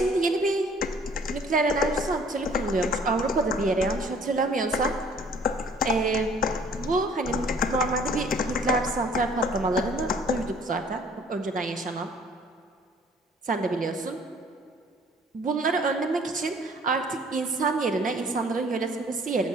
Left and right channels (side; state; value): both; normal; correlation 0.55